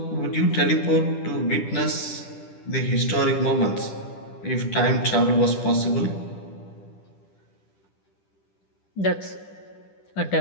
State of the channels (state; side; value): late; right; 10 ms